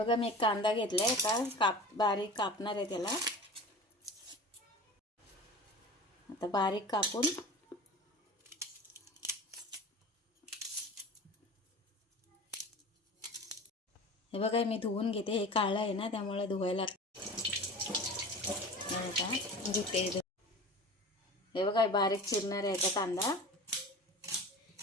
मी एक कांदा घेतलाय. आता बारीक कापणार आहे त्याला. आता बारीक कापून हे बघा मी धुवून घेते. हे काळं आहे ना त्यामुळे धुवायला धुते. हे बघा बारीक चिरणार आहे कांदा.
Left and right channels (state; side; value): normal; both; correlation 0.36